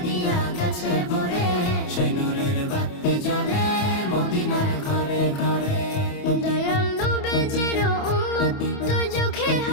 গেছে ভরে, সেই নূরের বাতি জ্বলে মদিনার ঘরে ঘরে। দয়াল নবীজির উম্মত দুজখে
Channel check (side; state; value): right; late; 28 ms